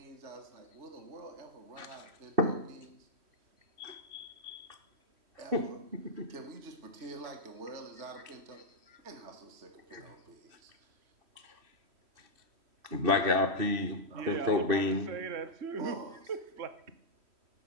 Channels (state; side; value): late; left; 3.1 ms